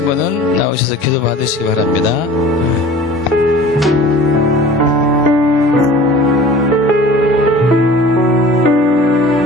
분은 나오셔서 기도 받으시기 바랍니다.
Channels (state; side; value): normal; both; correlation 0.43